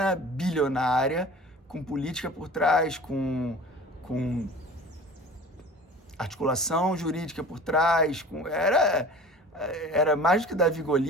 bilionária, com política por trás, com articulação jurídica por trás. era mais do que Davi e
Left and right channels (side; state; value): both; normal; correlation 0.40